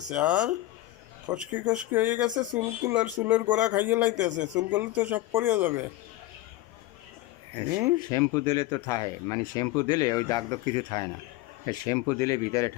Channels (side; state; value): right; quieter; 16.3 dB